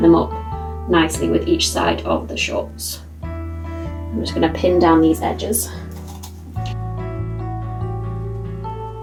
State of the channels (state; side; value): identical; both; correlation 1.00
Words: them up nicely with each side of the shorts. I'm just going to pin down these edges.